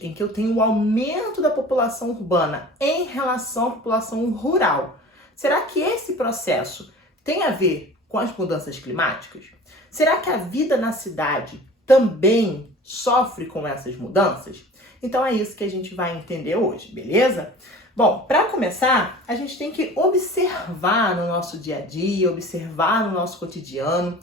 em que eu tenho o aumento da população urbana em relação à população rural, será que esse processo tem a ver com as mudanças climáticas? Será que a vida na cidade também sofre com essas mudanças? Então é isso que a gente vai entender hoje, beleza? Bom, para começar, a gente tem que observar no nosso dia a dia, observar no nosso cotidiano,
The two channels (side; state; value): both; normal; correlation 0.42